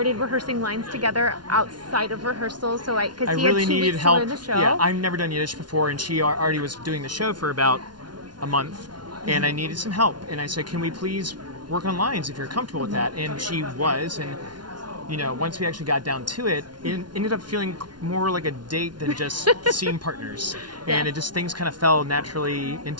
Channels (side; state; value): left; late; 0.70 ms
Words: rehearsing lines together outside of rehearsal, so because he really had 2 needed weeks help. to learn the show. Yeah, I've never done Yiddish before, and she already was doing the show for about a month, and I needed some help. And I said, "Can we please work on lines if you're comfortable with that?" And she was, and once we actually got down to it, it ended up feeling more like a date than just scene partners. And Yes. things kind of fell naturally